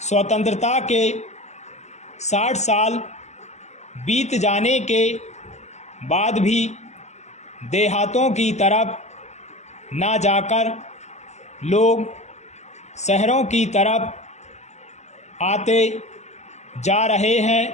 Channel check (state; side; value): late; right; 0.33 ms